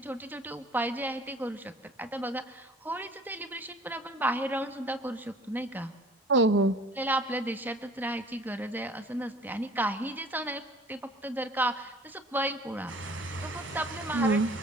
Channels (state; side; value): normal; both; correlation 0.50